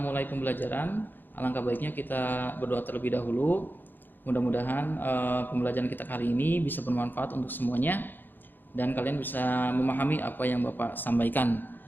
pembelajaran, alangkah baiknya kita berdoa terlebih dahulu. Mudah-mudahan pembelajaran kita kali ini bisa bermanfaat untuk semuanya dan kalian bisa memahami apa yang Bapak sampaikan.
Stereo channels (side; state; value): right; late; 0.091 ms